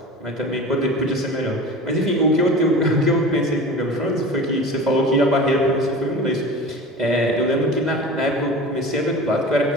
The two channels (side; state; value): both; normal; correlation 0.35